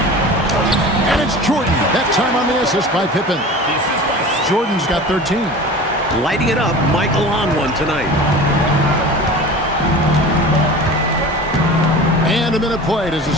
And it's Jordan. That time on the assist by Pippen. Jordan's got 13. Lighting it up, Michael on one tonight. And a minute played as the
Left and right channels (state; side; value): normal; both; correlation 0.36